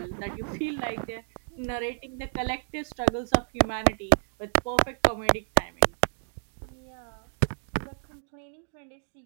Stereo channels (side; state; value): left; silent; digital silence